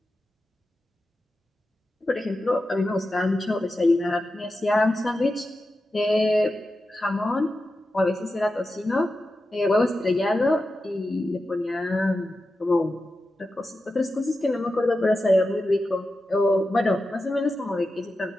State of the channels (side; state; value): both; normal; correlation 0.91